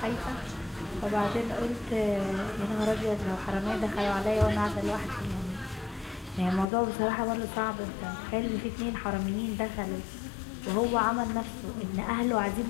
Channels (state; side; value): drops out; right; at 6.7 s